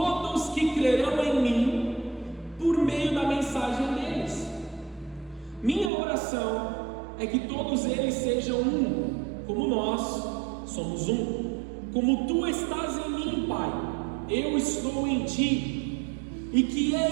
que crerão em mim por meio da mensagem deles. Minha oração é que todos eles sejam um, como nós somos um. Como tu estás em mim, Pai, eu estou em ti, e que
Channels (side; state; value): left; drops out; at 5.9 s